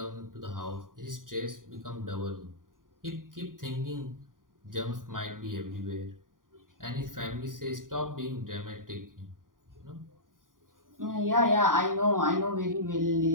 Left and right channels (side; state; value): left; late; 0.90 ms